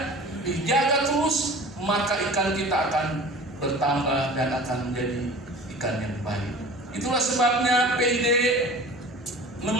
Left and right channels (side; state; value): both; normal; correlation 0.41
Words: dijaga terus, maka ikan kita akan bertambah dan akan menjadi ikan yang baik. Itulah sebabnya PID